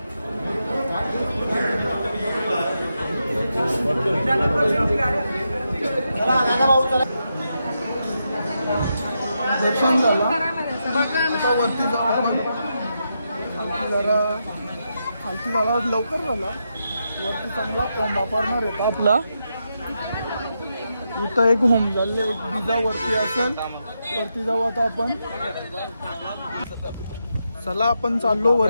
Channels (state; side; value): inverted; both; correlation -0.85